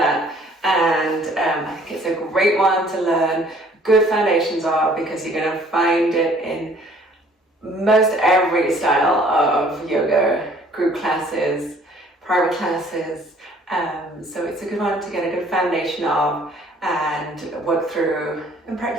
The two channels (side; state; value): both; normal; correlation 0.57